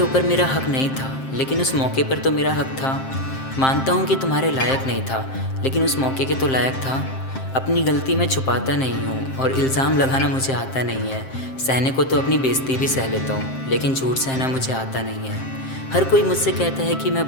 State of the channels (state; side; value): late; right; 7.6 ms